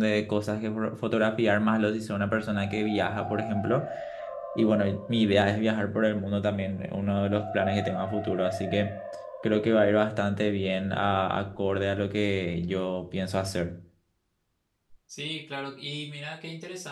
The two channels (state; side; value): identical; both; correlation 1.00